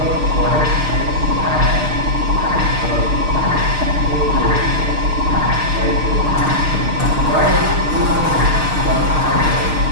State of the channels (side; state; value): left; late; 6.5 ms